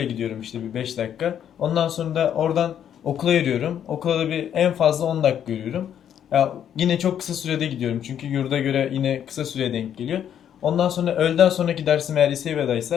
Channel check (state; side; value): quieter; right; 9.5 dB